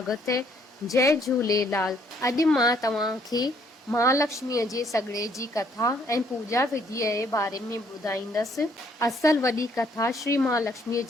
है। जय झूलेलाल। अॼु मां तव्हांखे महालक्ष्मीअ जे सॻिड़े जी कथा ऐं पूजा विधीअ जे बारे में ॿुधाईंदसि। असल वॾी कथा श्री महालक्ष्मीअ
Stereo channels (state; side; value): normal; both; correlation 0.66